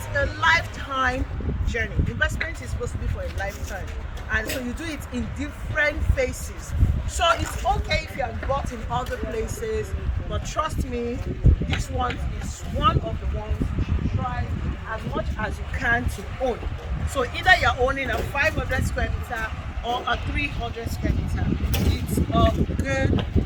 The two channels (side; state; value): both; identical; correlation 1.00